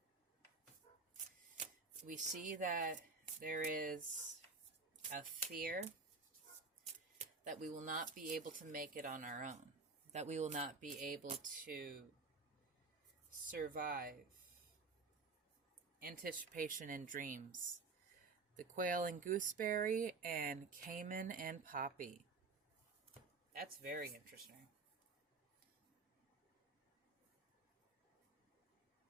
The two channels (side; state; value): left; quieter; 4.2 dB